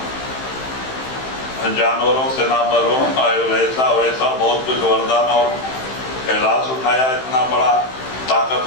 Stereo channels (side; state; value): right; late; 15 ms